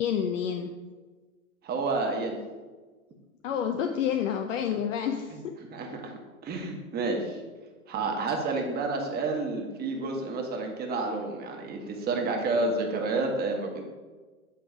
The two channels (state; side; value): normal; both; correlation 0.21